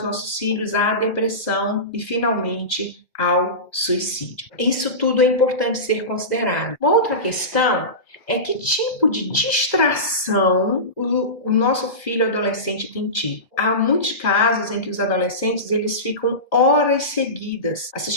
nossos filhos à depressão e finalmente ao suicídio. Isso tudo é importante ser considerado. Uma outra questão é que tipo de distração o nosso filho adolescente tem tido. Há muitos casos em que os adolescentes eles ficam horas seguidas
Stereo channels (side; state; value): right; late; 2.0 ms